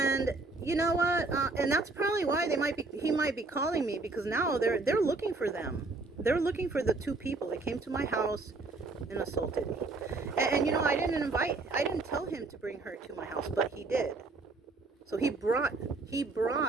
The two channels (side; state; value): left; quieter; 3.6 dB